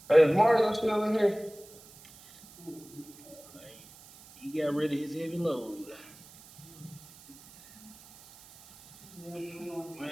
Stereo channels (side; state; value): right; noise; hiss, 21 dB below the sound